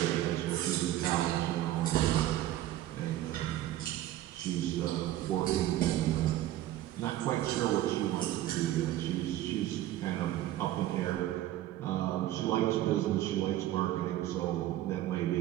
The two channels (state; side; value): quieter; left; 13.9 dB